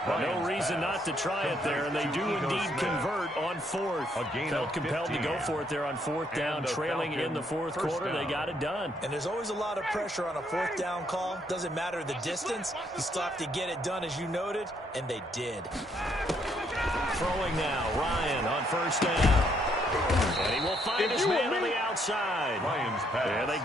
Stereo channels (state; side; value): normal; both; correlation 0.72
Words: No reason not to try it there, and they do indeed convert on 4th. Felt compelled to go for it there on 4th down, trailing in the 4th quarter. They got it done. And there's always a lot of pressure on a 4th down call. Doesn't matter the distance. You still have to get it done, as you noted, and they did. Throwing now, Ryan on 1st down. And he will find his man on the outside. And they